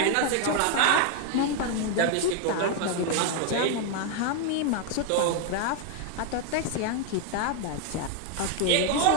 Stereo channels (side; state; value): both; different; correlation 0.00